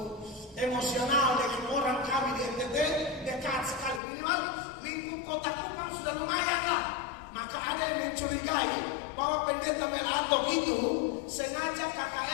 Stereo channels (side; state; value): right; drops out; at 4.0 s